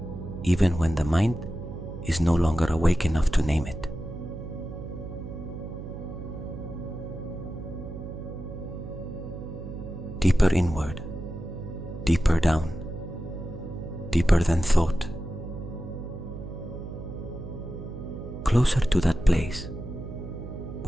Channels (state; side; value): noise; right; hum, 10 dB below the sound